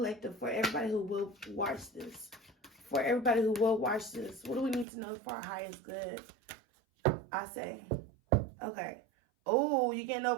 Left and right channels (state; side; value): drops out; left; at 4.9 s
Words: for everybody who will watch this? For everybody who will watch this, what do we need to know for our highest good? I say, okay. Oh, you're getting